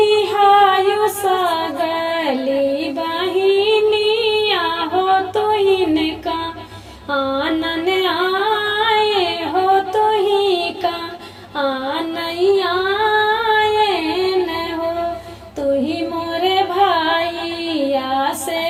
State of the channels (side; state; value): both; identical; correlation 1.00